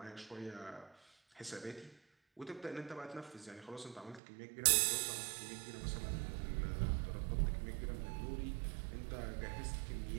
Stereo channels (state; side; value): drops out; left; at 4.2 s